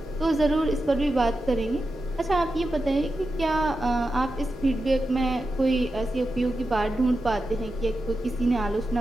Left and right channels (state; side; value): normal; both; correlation 0.90